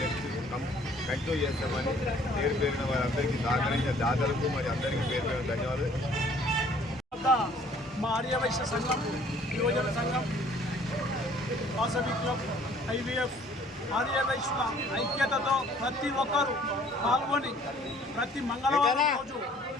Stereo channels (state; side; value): normal; both; correlation 0.57